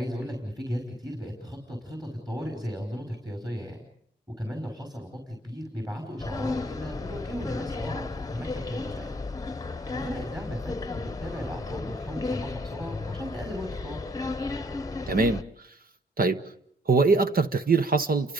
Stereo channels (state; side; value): normal; both; correlation 0.66